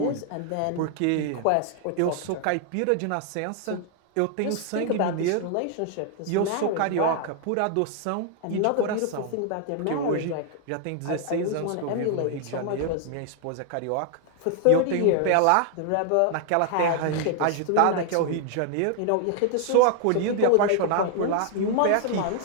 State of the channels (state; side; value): different; both; correlation 0.00